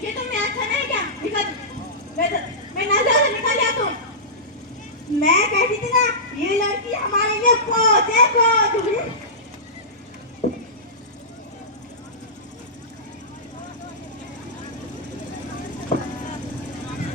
ये तुमने अच्छा नहीं किया। निकल, मैं नजर से निकल जा तुम। मैं कहती थी ना, ये लड़की हमारे लिए खोज है, खोज।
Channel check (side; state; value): both; normal; correlation -0.17